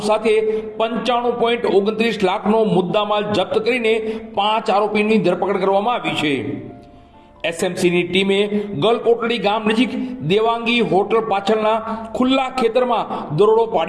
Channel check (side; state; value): both; identical; correlation 1.00